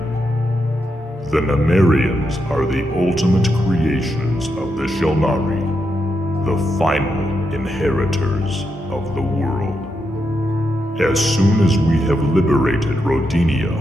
The Numerians are the ultimate creations of the Shulnari, the final inheritors of the world. As soon as we have liberated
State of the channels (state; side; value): normal; both; correlation 0.83